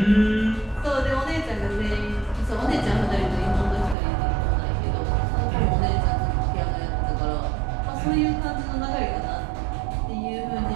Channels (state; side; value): drops out; left; at 4.0 s